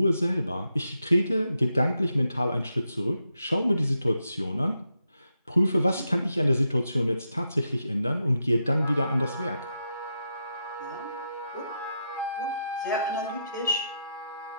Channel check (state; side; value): inverted; both; correlation -0.83